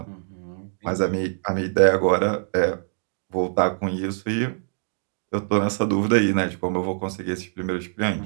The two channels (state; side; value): silent; left; digital silence